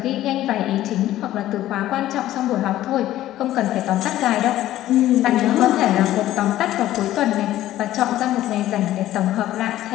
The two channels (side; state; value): right; quieter; 13.9 dB